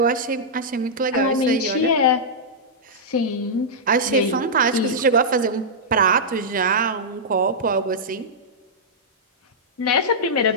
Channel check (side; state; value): both; normal; correlation -0.10